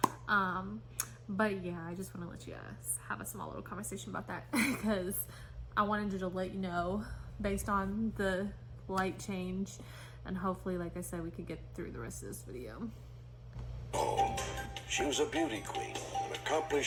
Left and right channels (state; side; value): identical; both; correlation 1.00